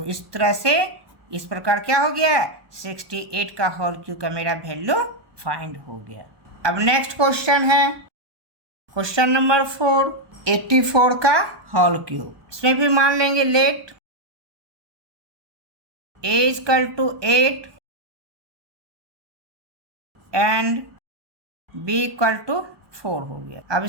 इस तरह से इस प्रकार क्या हो गया 68 का होल क्यूब का मेरा वैल्यू फाइंड हो गया। अब नेक्स्ट क्वेश्चन है क्वेश्चन नंबर 4, 84 का होल क्यूब। इसमें भी मान लेंगे let a equal to 8 and b equal to 4 हो गया। अब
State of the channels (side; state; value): left; late; 1.2 ms